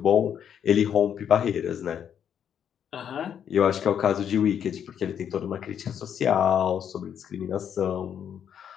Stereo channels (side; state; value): right; quieter; 8.7 dB